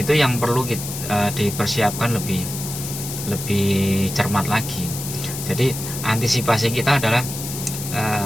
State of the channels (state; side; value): noise; left; hiss, 8 dB below the sound